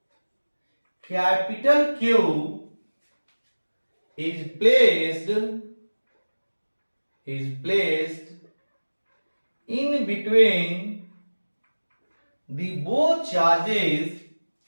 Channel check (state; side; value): inverted; both; correlation -1.00